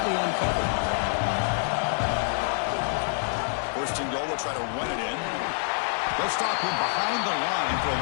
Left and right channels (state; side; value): silent; right; 60 dB below the other